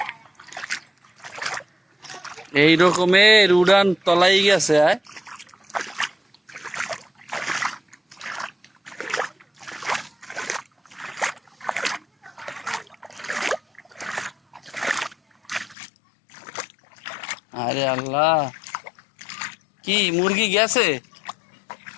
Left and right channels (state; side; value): drops out; right; at 15.8 s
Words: এই রকমের উড়ান তলাই গেছে। আয় আরে আল্লাহ, কি মুরগি গেছে?